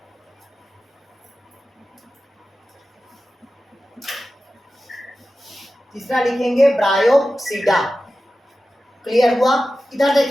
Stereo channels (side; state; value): both; normal; correlation 0.94